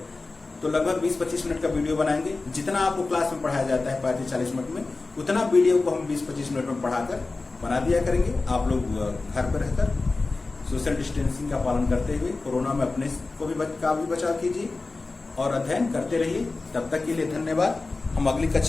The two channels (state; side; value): quieter; right; 3.6 dB